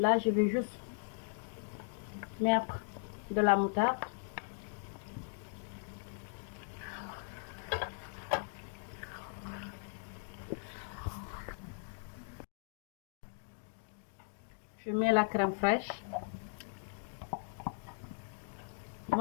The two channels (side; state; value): right; silent; digital silence